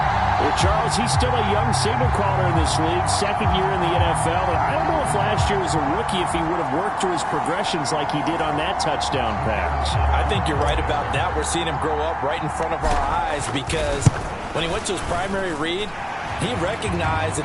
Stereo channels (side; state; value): both; identical; correlation 1.00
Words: Well, Charles, he's still a young signal caller in this league, 2nd year in the NFL. And I don't know if last year as a rookie if he would have worked through his progressions like he did on that touchdown pass. I think you're right about that. We're seeing him grow up right in front of our eyes because when he went to his primary read, he recognized that